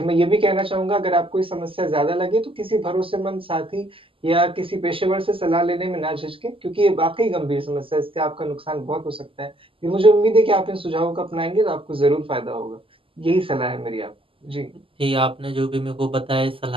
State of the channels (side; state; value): left; late; 0.26 ms